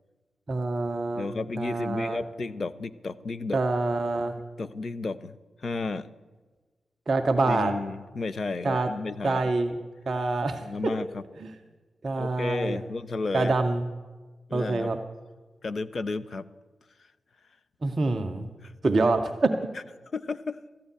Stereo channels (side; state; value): both; normal; correlation 0.91